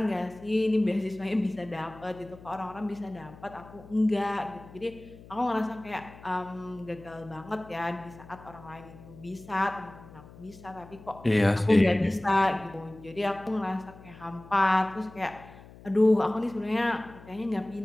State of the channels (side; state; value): left; noise; hum, 19 dB below the sound